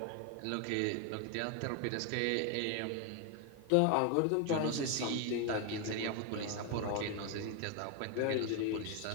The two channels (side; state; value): both; different; correlation 0.01